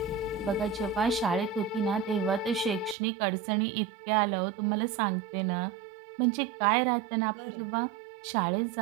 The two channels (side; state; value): left; drops out; at 3.0 s